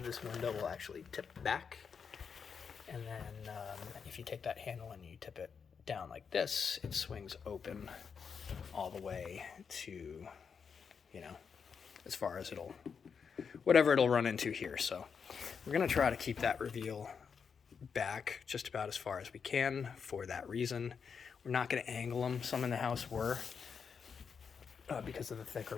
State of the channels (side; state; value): right; quieter; 6.2 dB